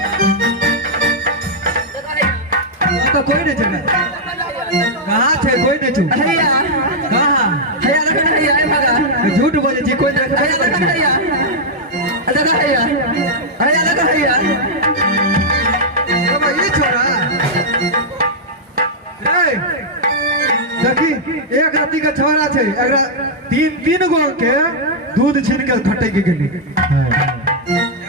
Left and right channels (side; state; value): both; normal; correlation -0.06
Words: तो कोई नहीं चला, कहाँ थे कोई नहीं छू। हैया कहाँ हैया लगा हैया ए भगा झूठ बोले छी, कोई नहीं हैया लगा हैया लगा हैया हैया लगा हैया। अब ये छोरा रे देखी एक राती का छोरा छे, एकरा तीन गो के दूध छीन के खटे के गेली।